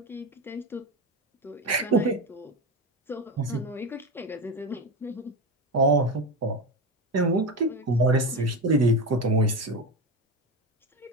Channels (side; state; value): both; normal; correlation 0.19